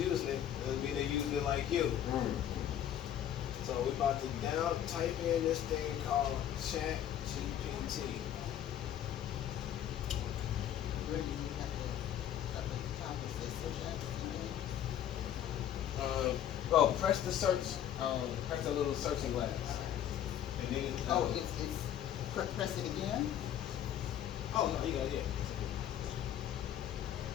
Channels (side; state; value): right; quieter; 10.5 dB